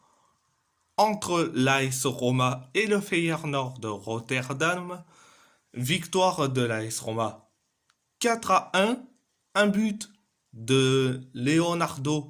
entre l'AS Roma et le Feyenoord de Rotterdam. Victoire de l'AS Roma 4-1, un but de Leonardo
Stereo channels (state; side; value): identical; both; correlation 1.00